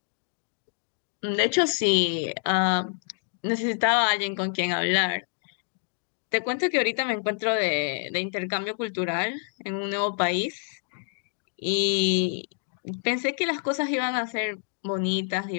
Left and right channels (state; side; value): silent; right; digital silence